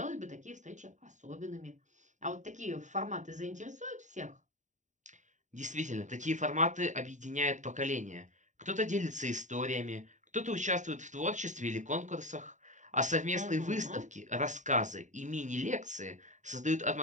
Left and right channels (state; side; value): late; left; 0.36 ms